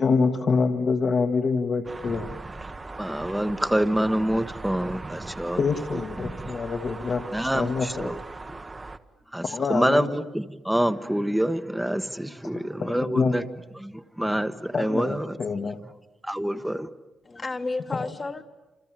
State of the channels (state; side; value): normal; both; correlation 0.93